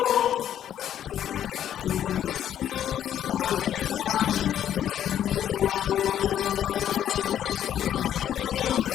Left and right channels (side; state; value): right; quieter; 10.5 dB